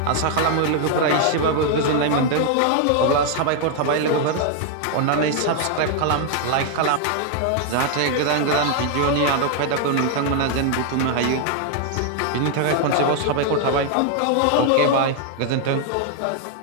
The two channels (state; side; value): different; both; correlation 0.00